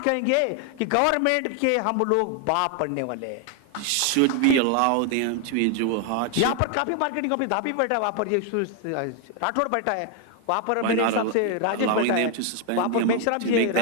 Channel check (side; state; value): both; different; correlation 0.00